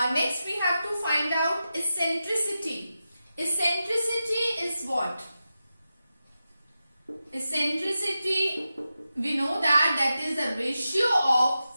Next we have to find out eccentricity. Eccentricity is what? Eccentricity, we know that is the ratio of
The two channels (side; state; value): both; inverted; correlation -0.91